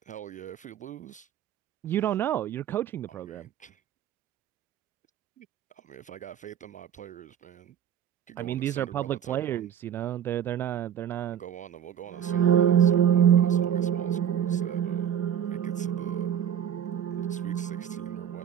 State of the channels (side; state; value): left; quieter; 9.5 dB